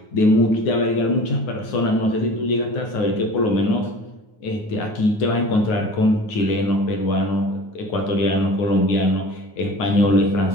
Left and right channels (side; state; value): right; late; 9.5 ms